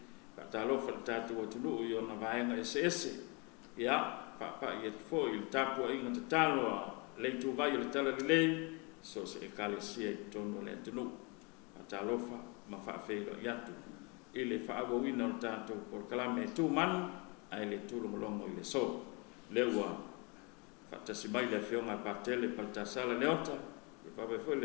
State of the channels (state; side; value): quieter; right; 30.5 dB